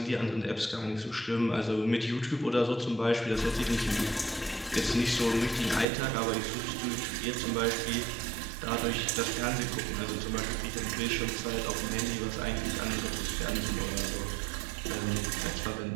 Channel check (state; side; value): drops out; left; at 5.9 s